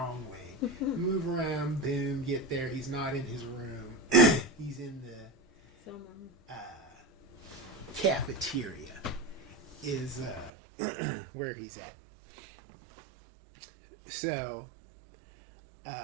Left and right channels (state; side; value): drops out; left; at 10.5 s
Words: wing. Move around, boom, get there. He's not in his room. He's in the cafeteria is where he's at. So